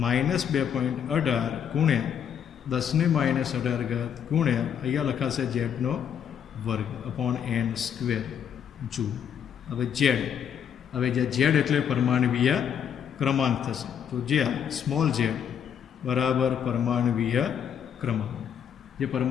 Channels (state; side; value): quieter; right; 8.4 dB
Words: -2.18 ગુણ્યા 10⁻18 ગુણ્યા અહીંયા લખાશે ઝેડનો વર્ગ અપોન n સ્ક્વેર જૂલ. હવે ઝેડ એટલે પરમાણવીય ક્રમાંક થશે. તો જ્યાં સ્મોલ ઝેડ બરાબર પરમાણવીય ક્રમાંક, જે